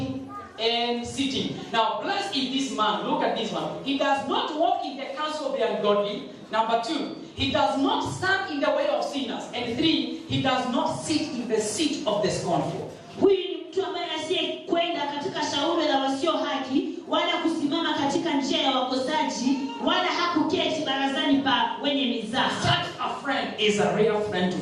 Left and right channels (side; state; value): both; identical; correlation 1.00